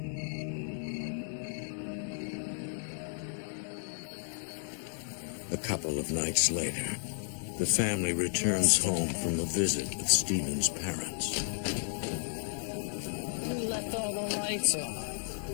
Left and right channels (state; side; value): silent; right; 56 dB below the other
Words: A couple of nights later, the family returns home from a visit with Stephen's parents. Who left all the lights on?